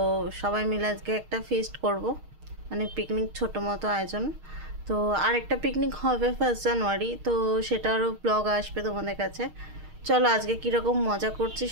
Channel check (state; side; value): late; left; 6.4 ms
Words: সবাই মিলে আজকে একটা ফিস্ট করব, মানে পিকনিক, ছোটো মতো আয়োজন। তো আরেকটা পিকনিক হবে 1 জানুয়ারি, তো সেটারও ব্লগ আসবে তোমাদের কাছে। চলো আজকে কীরকম মজা করছি